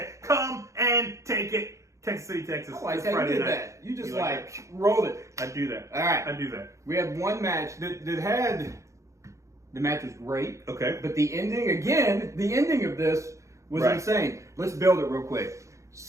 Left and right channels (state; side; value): late; left; 0.15 ms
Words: Come and take it. Texas City, Texas. I like how you did that. You just rolled it. I do that. All right. I do that. We had one match that had... The match was great. Okay. But the ending of this was insane. Let's build it real quick.